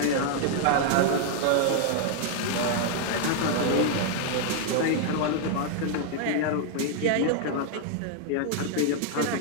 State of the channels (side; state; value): both; different; correlation 0.00